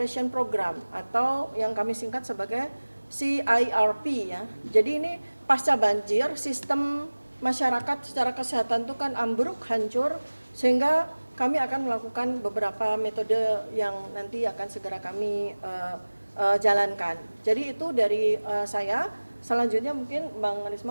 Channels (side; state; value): both; inverted; correlation -1.00